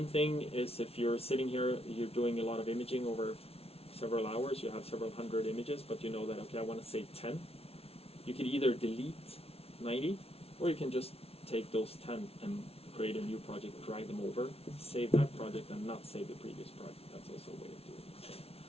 thing is, if you're sitting here, you're doing a lot of imaging over several hours, you have several hundred images, but you know that, okay, I want to save 10. You can either delete 90, or you can just take those 10 and create a new project, drag them over, save that project, and not save the previous project. That's also a way of doing it.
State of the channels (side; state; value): right; late; 0.29 ms